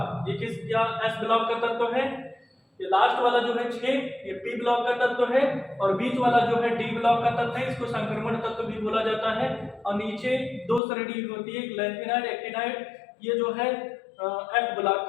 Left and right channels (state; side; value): drops out; right; at 10.8 s